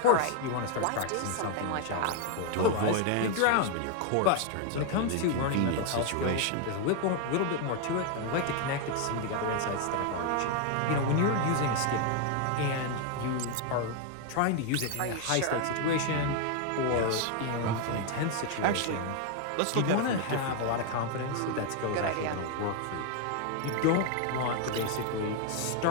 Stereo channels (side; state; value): both; different; correlation 0.00